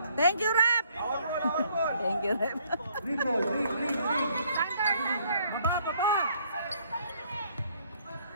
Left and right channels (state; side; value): inverted; both; correlation -0.64